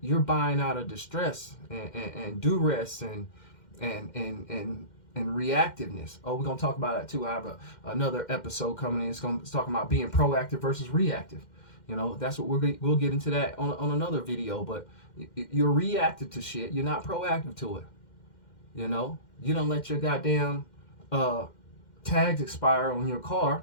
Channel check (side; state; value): right; late; 2.1 ms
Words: buying out of distress and duress and reactiveness. Oh, we're going to talk about that too. I have another episode coming in. It's talking about being proactive versus reactive. That's what we'll get into that on another video. But you're reactive to shit. You're not proactive to it. You don't let your goddamn tags expire on your